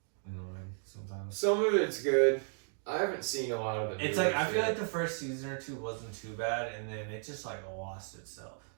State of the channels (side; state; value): left; silent; 55 dB below the other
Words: annoying sometimes. Some of it's good. I haven't seen a lot of it. It's like I feel like the first season or 2 wasn't too bad, and then it just like lost itself.